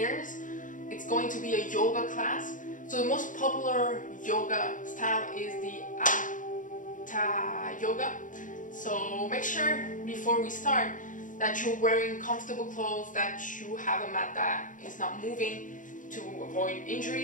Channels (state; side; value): late; right; 0.38 ms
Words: It's going to be a yoga class. So the most popular yoga style is the Hatha yoga. So make sure before we start that you're wearing comfortable clothes, that you have a mat that is not moving to avoid